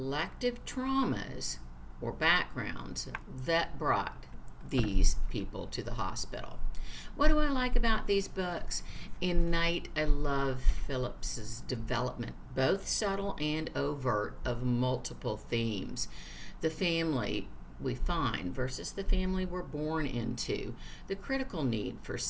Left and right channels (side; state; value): both; identical; correlation 1.00